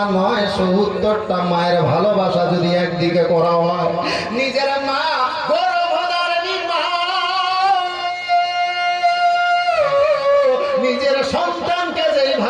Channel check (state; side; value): identical; both; correlation 1.00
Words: নয়, ৭০টা মায়ের ভালোবাসা যদি একদিকে করা হয়, নিজের মা গর্ভধারিণী মা নিজের সন্তানকে